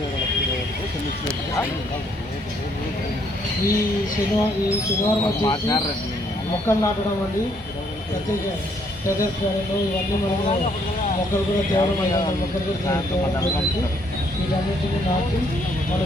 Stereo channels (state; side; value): normal; both; correlation 0.68